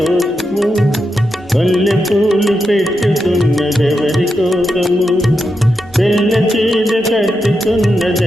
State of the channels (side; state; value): both; normal; correlation 0.86